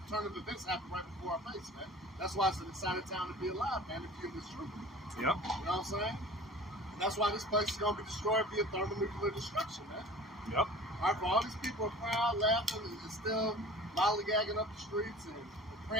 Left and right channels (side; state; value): both; normal; correlation 0.43